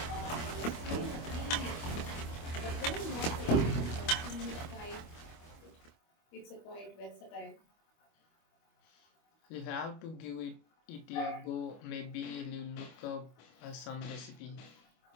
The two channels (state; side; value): late; right; 25 ms